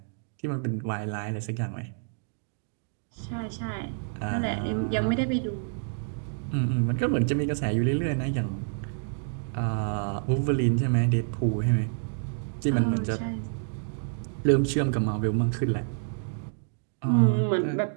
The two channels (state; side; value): silent; left; digital silence